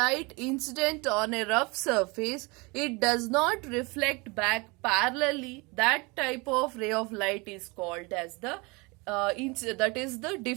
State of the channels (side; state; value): left; quieter; 27.0 dB